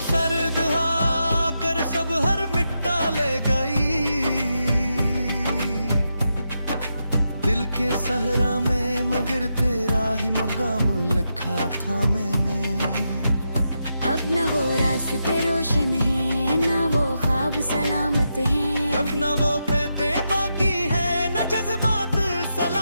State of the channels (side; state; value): both; inverted; correlation -0.85